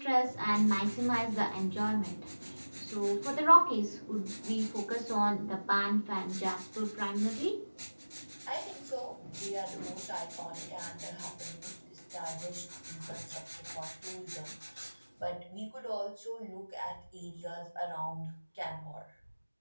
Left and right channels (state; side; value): inverted; both; correlation -1.00